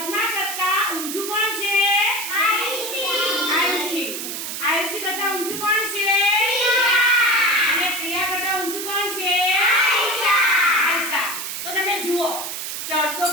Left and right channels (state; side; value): noise; right; hiss, 5 dB below the sound